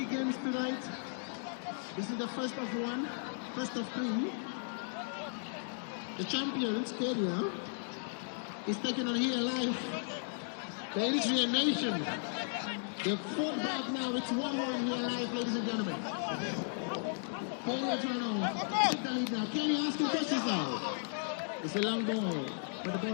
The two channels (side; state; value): right; silent; digital silence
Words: games tonight. This is the first of one, first of 3. The champions, Kenya, is taking on here live the Eritrean nation. They're fought back now. It's 1-1 here live, ladies and gentlemen. Kenya trying to take the lead now. Kenya asking questions now. It's a long ball, but the